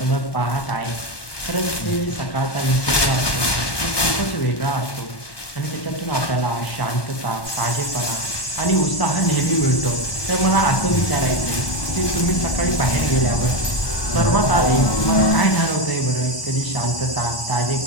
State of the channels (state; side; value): late; right; 1.2 ms